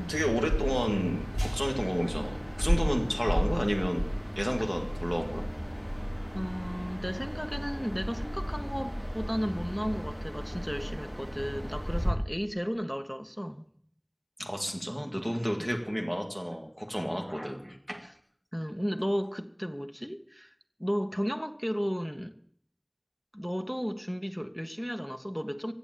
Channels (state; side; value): identical; both; correlation 1.00